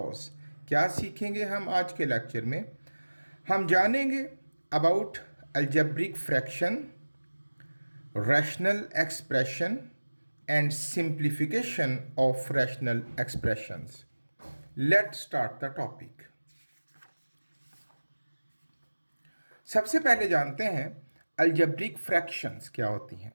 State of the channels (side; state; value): both; inverted; correlation -1.00